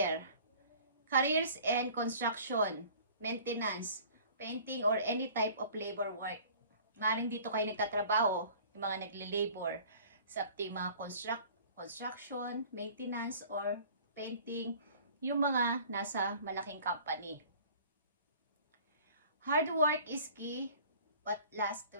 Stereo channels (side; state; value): both; inverted; correlation -0.48